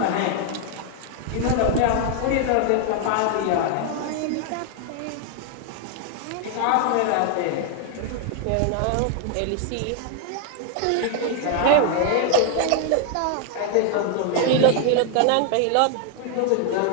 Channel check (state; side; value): different; both; correlation 0.00